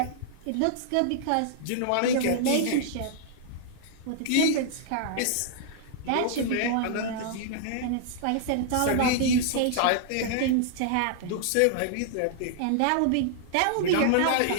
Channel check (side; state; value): both; different; correlation -0.01